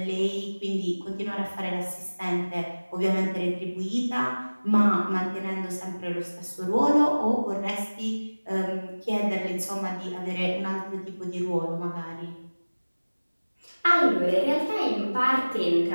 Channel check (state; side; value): inverted; both; correlation -1.00